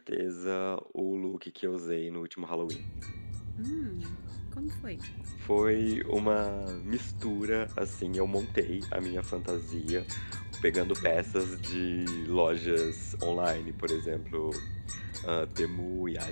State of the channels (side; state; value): both; inverted; correlation -1.00